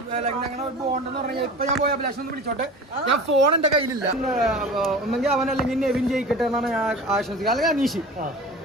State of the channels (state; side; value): normal; both; correlation 0.36